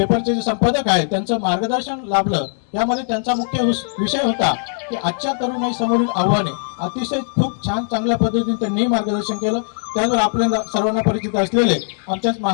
जे संपादक आहेत त्यांचं मार्गदर्शन लाभलं. यामध्ये त्यांचा मुख्य विषय होता की आजच्या तरुणाई समोरील आव्हाने. अतिशय खूप छान चांगल्या पद्धतीने त्यांनी मार्गदर्शन केलं. त्याचबरोबर आपल्या सर्वांना परिचित असलेले आमच्याच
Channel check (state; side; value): silent; right; digital silence